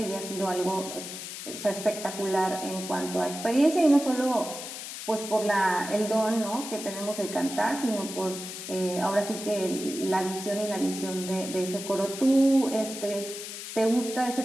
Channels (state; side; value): noise; left; hiss, 9 dB below the sound